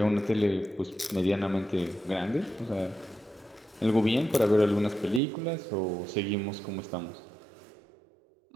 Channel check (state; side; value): drops out; left; at 5.2 s